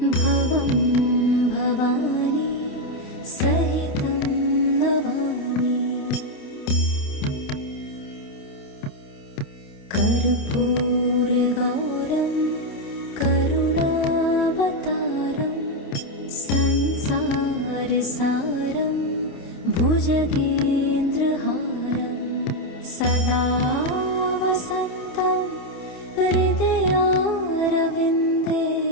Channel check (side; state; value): right; late; 28 ms